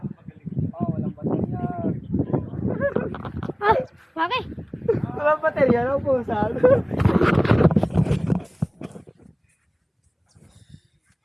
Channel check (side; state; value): both; identical; correlation 1.00